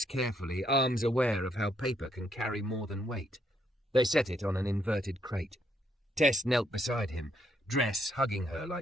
carefully, arms aware of how paper can carry more than weight. They set it on an inverted crate. Tess knelt beside him, dress hugging her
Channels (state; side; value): normal; both; correlation 0.74